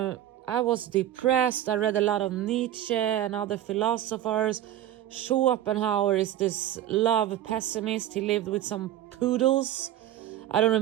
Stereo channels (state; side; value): quieter; left; 12.4 dB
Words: was depressed. I read a lot of Nietzsche and other philosophers. Schopenhauer is this love pessimist. He lived with some poodles. I don't